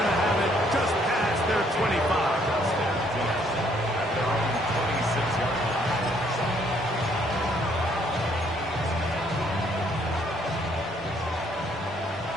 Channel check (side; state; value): both; normal; correlation 0.66